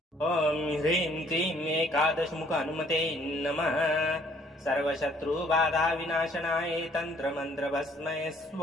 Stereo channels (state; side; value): normal; both; correlation 0.62